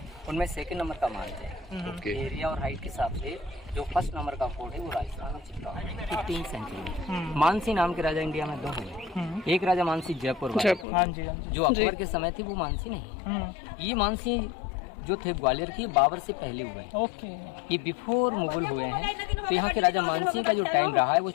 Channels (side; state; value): right; drops out; at 10.9 s